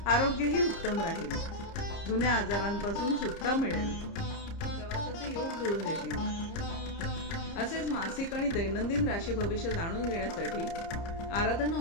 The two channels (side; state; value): right; late; 30 ms